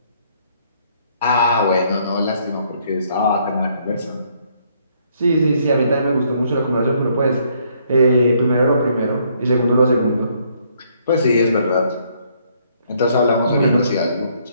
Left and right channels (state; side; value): inverted; both; correlation -0.68